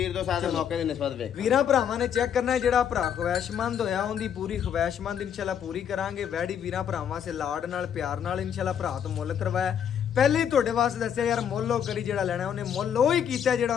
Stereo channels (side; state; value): right; quieter; 8.6 dB